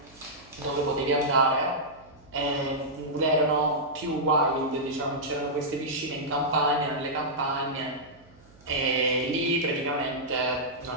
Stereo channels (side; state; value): right; noise; hum, 27 dB below the sound